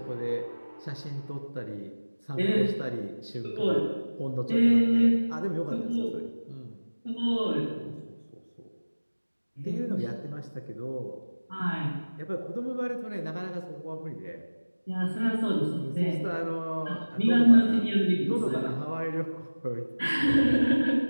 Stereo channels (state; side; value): inverted; both; correlation -1.00